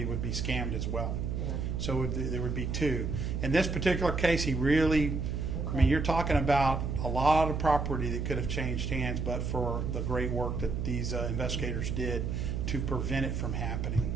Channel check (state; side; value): noise; right; hum, 2 dB below the sound